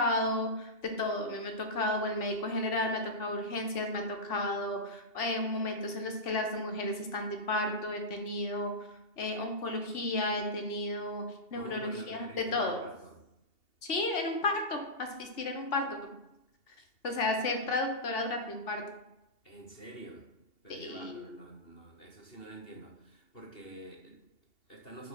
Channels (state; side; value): late; right; 2.8 ms